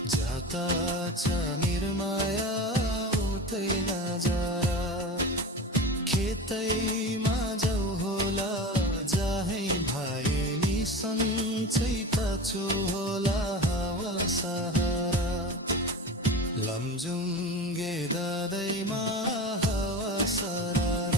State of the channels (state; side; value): normal; both; correlation 0.30